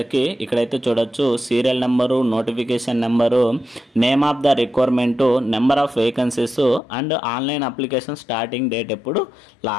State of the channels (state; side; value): drops out; right; at 6.8 s